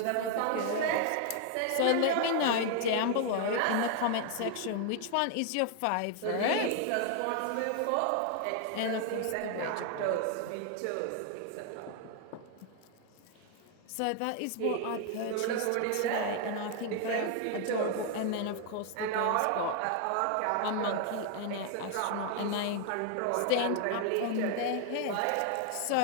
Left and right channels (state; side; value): different; both; correlation 0.00